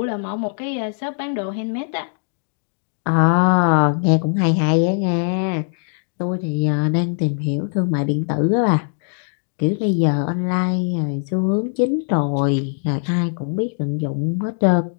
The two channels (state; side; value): silent; right; digital silence